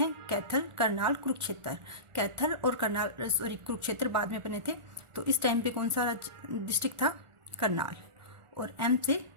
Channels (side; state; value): left; late; 1.4 ms